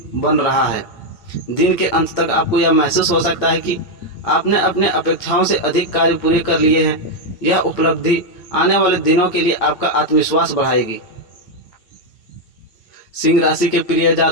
बन रहा है। दिन के अंत तक आपको यह महसूस हो सकता है कि आपने अपने अपेक्षाओं से अधिक कार्य पूरे कर लिए हैं। यह उपलब्धि आने वाले दिनों के लिए आपका आत्मविश्वास बढ़ाएगी। सिंह राशि के प्रिय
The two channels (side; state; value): right; late; 8.8 ms